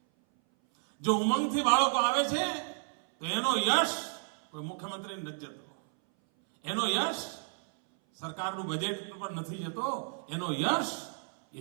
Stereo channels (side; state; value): left; silent; 57 dB below the other